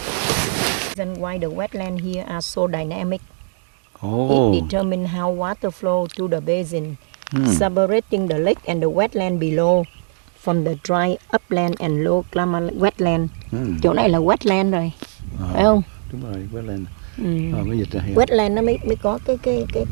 Why the wetlands here are so dynamic. Oh. It determines how water flow to the basin, separating the lake and the wetland below from the dry upland and low climate wetland. Chỗ này là wetland rồi, phải không? Đúng rồi, wetland. Mới dịch ra hiểu. Wetland nó mới có cái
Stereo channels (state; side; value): silent; left; digital silence